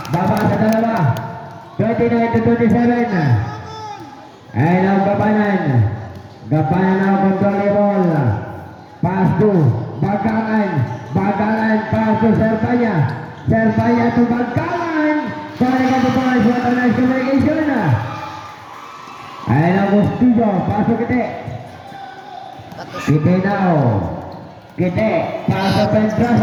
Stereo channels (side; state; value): both; identical; correlation 1.00